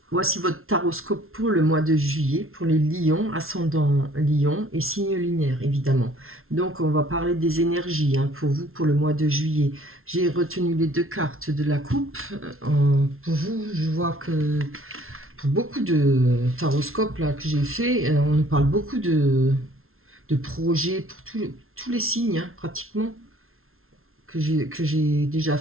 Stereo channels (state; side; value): late; left; 0.62 ms